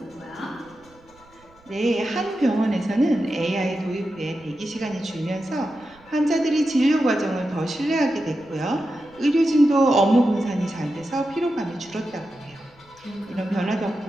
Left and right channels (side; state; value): right; noise; rumble, 29 dB below the sound